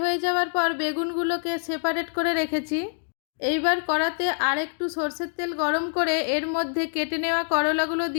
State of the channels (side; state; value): right; silent; digital silence